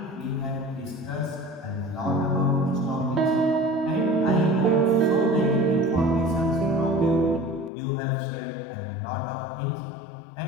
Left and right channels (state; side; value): drops out; right; at 7.7 s